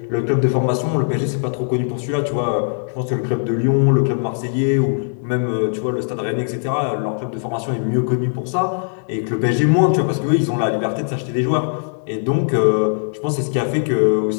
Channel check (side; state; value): right; silent; digital silence